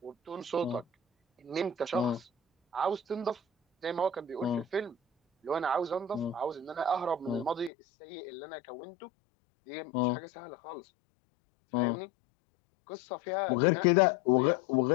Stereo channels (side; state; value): right; drops out; at 7.7 s